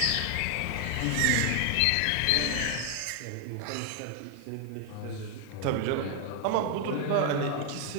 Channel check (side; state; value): both; different; correlation 0.00